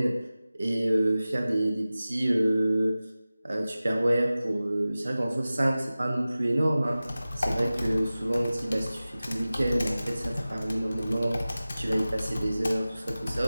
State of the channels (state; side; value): inverted; both; correlation -0.97